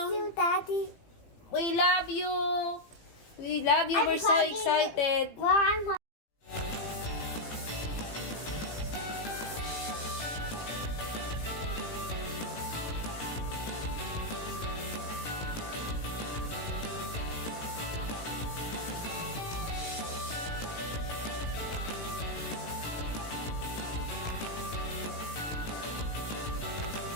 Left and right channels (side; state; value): right; late; 18 ms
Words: you, Daddy. We love you. We love you. I'm We're so hugging you. excited. Well, I'm